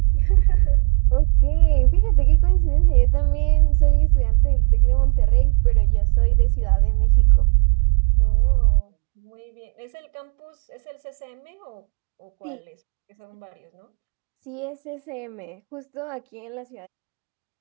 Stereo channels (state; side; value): quieter; left; 38.7 dB